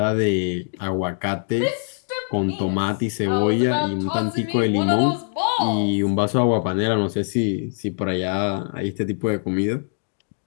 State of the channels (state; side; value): silent; right; digital silence